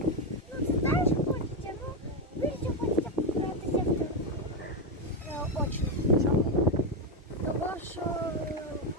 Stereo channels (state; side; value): normal; both; correlation 0.07